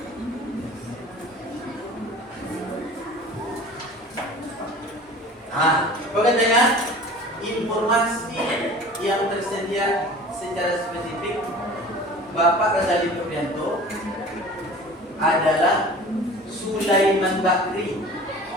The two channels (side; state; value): both; normal; correlation 0.42